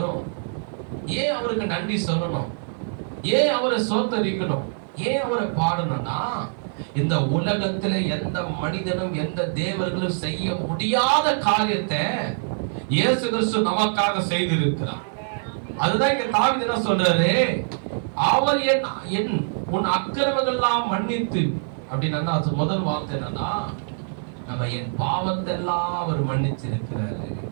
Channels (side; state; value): left; silent; 57 dB below the other